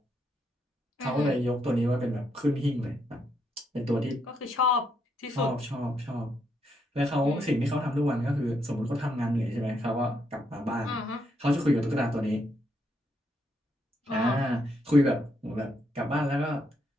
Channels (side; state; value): both; normal; correlation 0.77